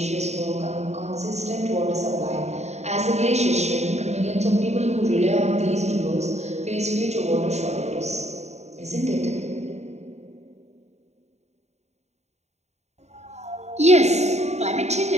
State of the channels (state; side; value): late; left; 0.32 ms